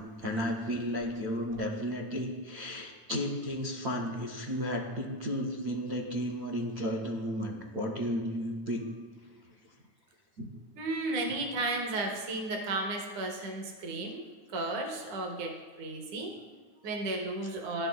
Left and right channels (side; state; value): left; late; 9.8 ms